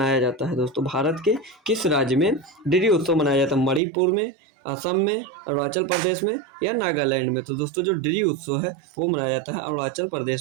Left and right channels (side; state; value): left; drops out; at 3.8 s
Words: जाता है दोस्तों? भारत के किस राज्य में ड्री उत्सव मनाया जाता है? मणिपुर में, असम में, अरुणाचल प्रदेश में या नागालैंड में? तो दोस्तों जो ड्री उत्सव है वो मनाया जाता है अरुणाचल